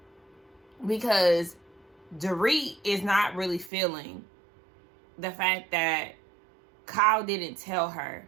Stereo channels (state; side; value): drops out; left; at 3.7 s